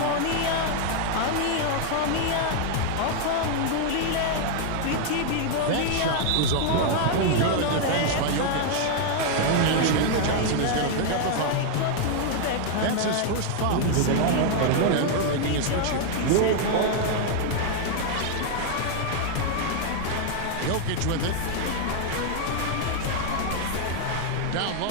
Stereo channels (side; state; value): both; different; correlation 0.00